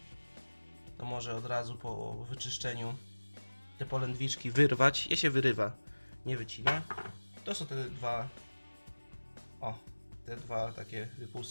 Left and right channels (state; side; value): inverted; both; correlation -1.00